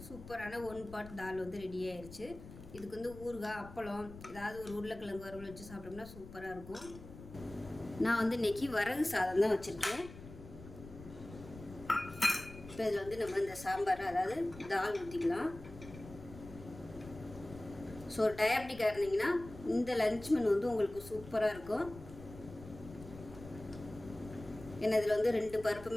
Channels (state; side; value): noise; left; rumble, 15 dB below the sound